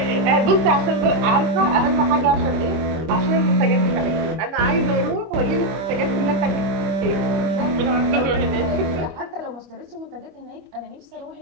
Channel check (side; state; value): left; late; 25 ms